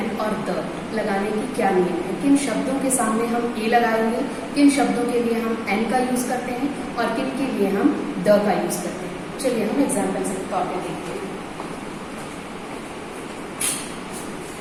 और द लगाने की क्या नियम है। किन शब्दों के सामने हम ए लगाएंगे, किन शब्दों के लिए हम एन का यूज करते हैं और किन के लिए हम द का यूज करते हैं। चलिए हम एग्जाम्पल के तौर पे देखते हैं।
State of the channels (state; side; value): identical; both; correlation 1.00